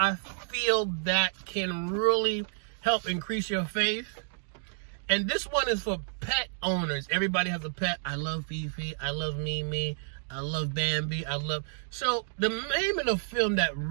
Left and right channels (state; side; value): silent; left; 58 dB below the other